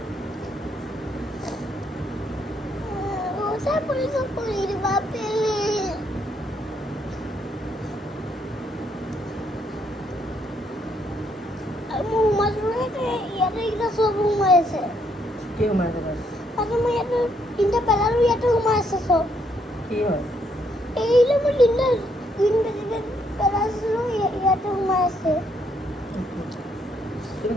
ওটা পুলিশে পানি দিবা পেলে মোৰ মাজতে ইয়াতে এটা সব সোমাই আছে কি সোমাই আছে তাত? তাতে মই ইয়াতে তিনিটা পেলালো ইয়াতে সোমাই আছে সব কি হয় এইলে মই তিনিটা গ্ৰীণ ভেজিটেবল পেলাইছিলোঁ ইয়াতে সোমাই আছে তুমি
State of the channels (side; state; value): both; normal; correlation 0.72